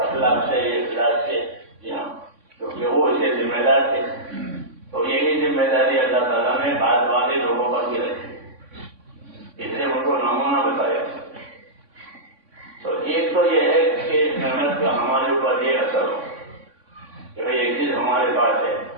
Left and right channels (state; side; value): late; left; 3.6 ms